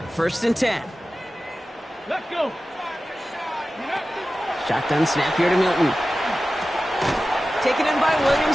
First and 10. Let's go. Shotgun snap here to Milton. Taken in by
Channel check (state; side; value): normal; both; correlation 0.95